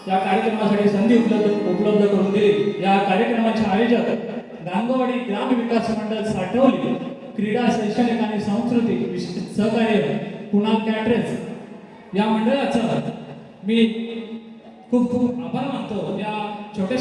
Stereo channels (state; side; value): identical; both; correlation 1.00